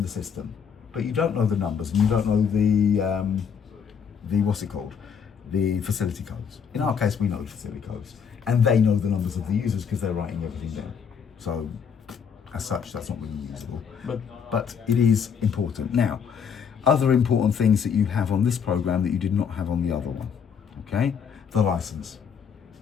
the system, but you don't know the numbers and you don't know the what's it called? The facility codes. In our case, we know the facility codes and they know the numbers of the users because they're writing everything down. So as such, that's not really usable, but it is important. Now, other important things that you have on this program that you did not have on the other one, okay? The license,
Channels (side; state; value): right; quieter; 7.0 dB